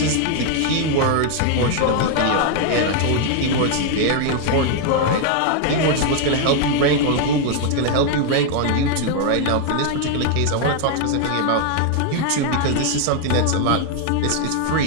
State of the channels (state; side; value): different; both; correlation 0.00